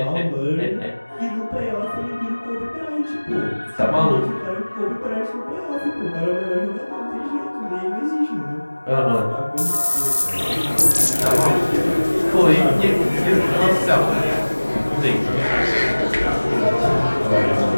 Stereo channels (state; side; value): inverted; both; correlation -1.00